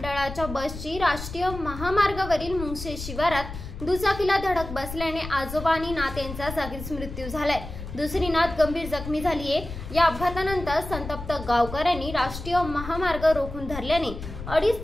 बसची राष्ट्रीय महामार्गावरील मुंगसे शिवारात दुचाकीला धडक बसल्याने आजोबा आणि नात यांचा जागीच मृत्यू झालाय। दुसरी नात गंभीर जखमी झालीये। या अपघातानंतर संतप्त गावकऱ्यांनी राष्ट्रीय महामार्ग रोखून धरल्याने 2.5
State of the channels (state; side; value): noise; left; rumble, 10 dB below the sound